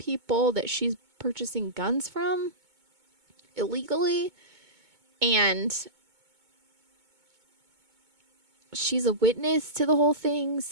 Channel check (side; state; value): left; late; 2.2 ms